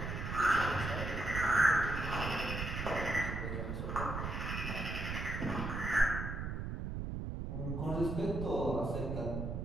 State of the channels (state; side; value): noise; right; rumble, 4 dB below the sound